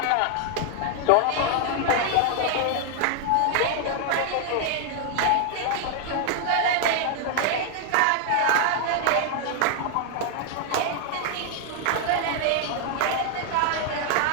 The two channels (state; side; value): different; both; correlation 0.00